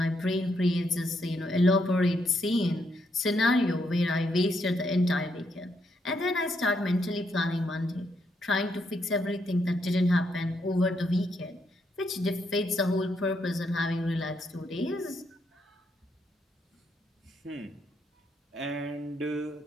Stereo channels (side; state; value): both; normal; correlation 0.77